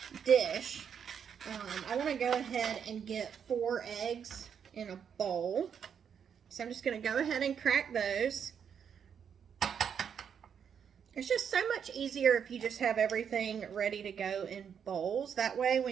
dish, I want to go ahead and get 4 eggs in a bowl. So I'm just going to go ahead and crack those. It's just so much easier if you just have everything ready to go in bowls. That way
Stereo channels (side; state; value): left; quieter; 7.6 dB